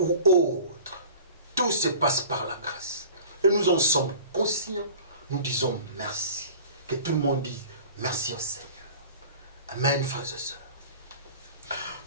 autres. Tout se passe par la grâce. Et nous en sommes conscients. Nous disons merci. Que tout le monde dise merci au Seigneur. Amen, frères et sœurs.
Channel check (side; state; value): both; inverted; correlation -0.42